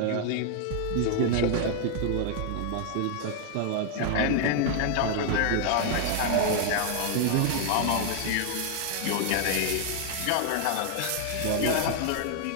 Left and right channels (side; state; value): both; different; correlation 0.00